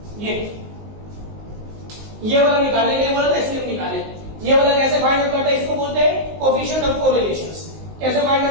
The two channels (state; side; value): late; left; 19 ms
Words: ये वाला निकालने के लिए बोला था, इसलिए निकाले। ये वाला कैसे फाइंड आउट करता है, इसको बोलते हैं कोएफिशिएंट ऑफ कोरिलेशंस। कैसे फाइंड